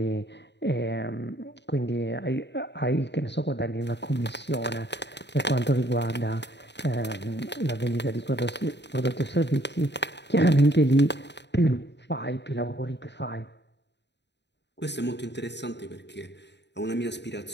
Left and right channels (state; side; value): late; right; 0.50 ms